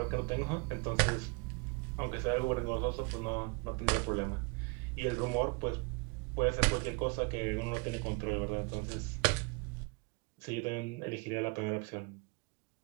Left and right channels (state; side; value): quieter; left; 30.9 dB